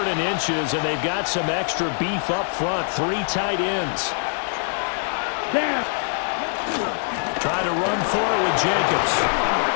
and inches, and they've got some extra beef up front. 3 tight ends. Trying to run for it with Jacobs.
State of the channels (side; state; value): right; silent; digital silence